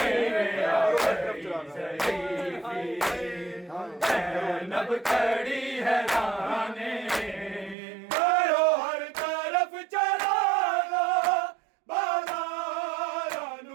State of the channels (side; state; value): left; drops out; at 7.8 s